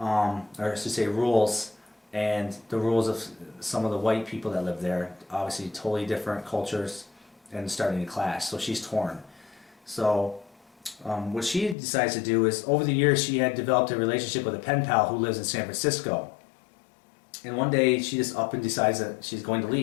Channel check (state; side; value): drops out; right; at 11.8 s